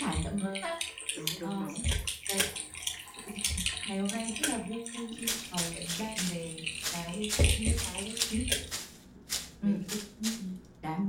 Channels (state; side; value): identical; both; correlation 1.00